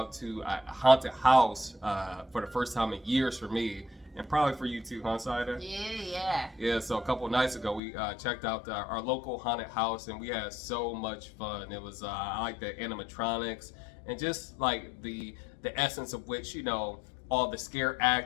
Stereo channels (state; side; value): drops out; right; at 7.8 s